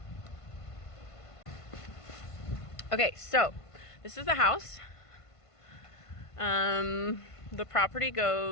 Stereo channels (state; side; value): late; right; 1.5 ms